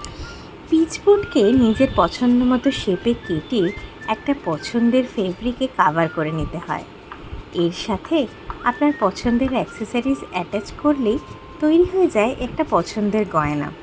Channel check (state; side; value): identical; both; correlation 1.00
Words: পিচবোর্ডকে নিজের পছন্দ মতো শেপে কেটে একটা পছন্দের ফেব্রিকে কাভার করে নিতে হয়। এর সাথে আপনার পছন্দের অ্যাক্সেসরিজ অ্যাটাচ করলেই তৈরি হয়ে যায় একটা পছন্দের গয়না।